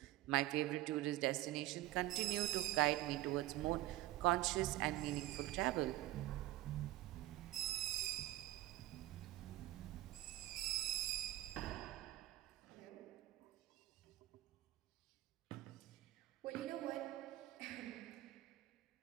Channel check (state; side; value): quieter; left; 16.2 dB